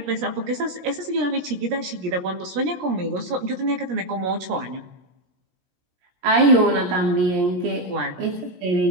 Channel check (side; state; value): left; late; 17 ms